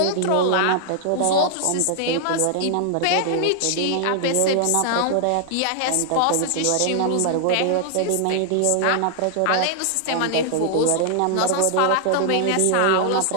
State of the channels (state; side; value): different; both; correlation -0.01